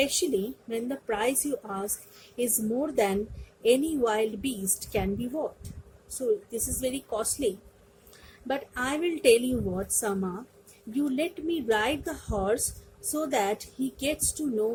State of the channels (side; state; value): both; identical; correlation 1.00